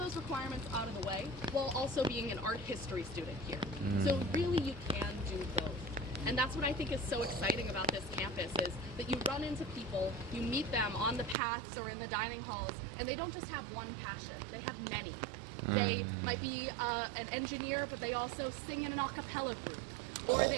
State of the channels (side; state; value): left; drops out; at 11.4 s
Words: requirements out of the way while also being an art history student here. So really you can do both. And that's what I think is so exciting about this campus is that you run into people, you meet them on the paths or in the dining halls, and they don't just have one passion, they have many. They might be an engineer, but they also sing in an a cappella group. Or